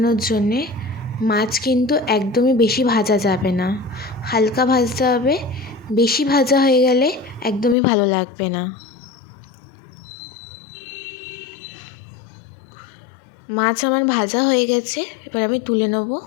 জন্যে মাছ কিন্তু একদমই বেশি ভাজা যাবে না, হালকা ভাজতে হবে। বেশি ভাজা হয়ে গেলে একদমই ভালো লাগবে না। মাছ আমার ভাজা হয়ে গেছে, এবার আমি তুলে নেব।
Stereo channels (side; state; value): right; drops out; at 7.8 s